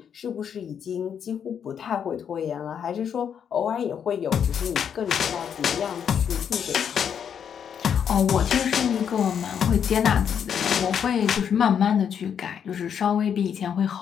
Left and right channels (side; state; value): right; quieter; 8.0 dB